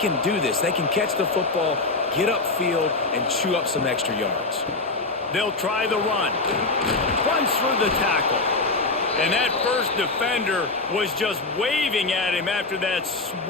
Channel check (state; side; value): quieter; right; 3.5 dB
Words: do this. They can catch the football, get upfield, and chew up some extra yards. They'll try the run. Punts for the tackle. And that first defender was just waving at him after that